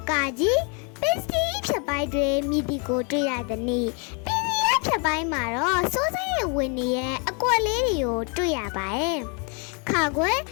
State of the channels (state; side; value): quieter; right; 35.6 dB